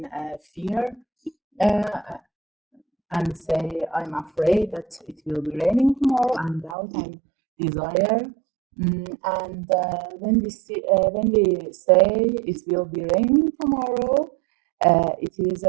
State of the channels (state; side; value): drops out; left; at 6.8 s